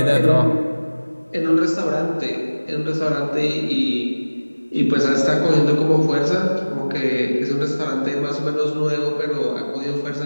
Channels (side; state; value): both; inverted; correlation -1.00